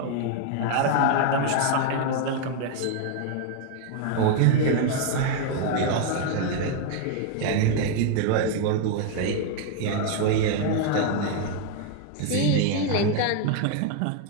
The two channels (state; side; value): different; both; correlation 0.00